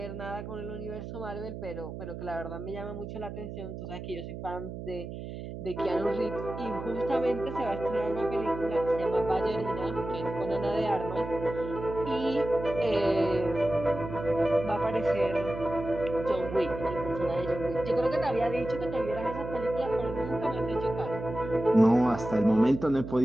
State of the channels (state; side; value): noise; right; hum, 9 dB below the sound